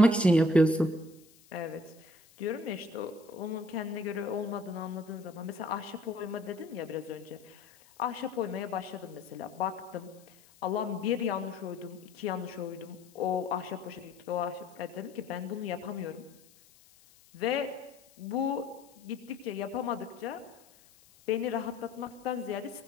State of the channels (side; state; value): left; noise; hiss, 26 dB below the sound